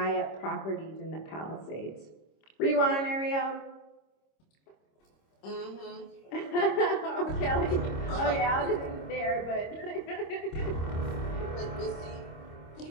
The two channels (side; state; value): right; late; 26 ms